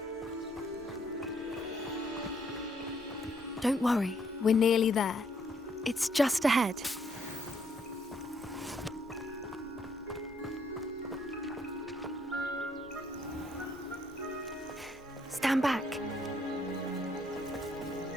Don't worry, we're nearly there. It's just ahead. Stand back.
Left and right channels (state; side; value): normal; both; correlation 0.70